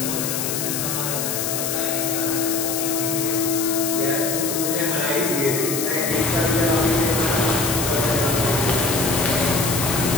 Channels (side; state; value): left; noise; hiss, 2 dB below the sound